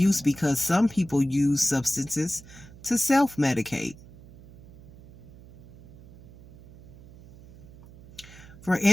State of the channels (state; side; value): noise; right; hum, 20 dB below the sound